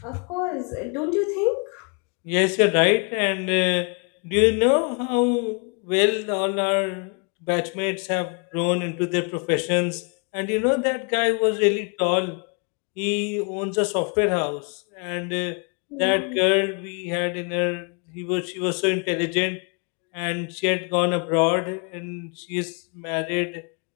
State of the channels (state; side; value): quieter; right; 35.9 dB